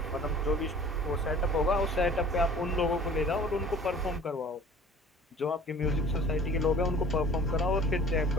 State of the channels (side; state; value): both; normal; correlation 0.47